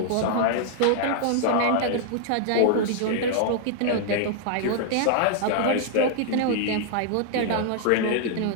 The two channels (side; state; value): both; different; correlation 0.00